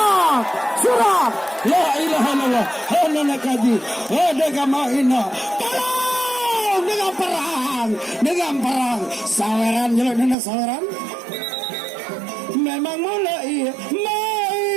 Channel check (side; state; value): left; drops out; at 10.4 s